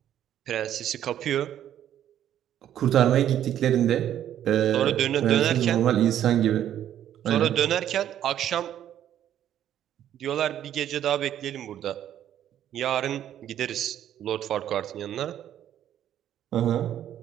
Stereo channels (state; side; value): quieter; left; 10.9 dB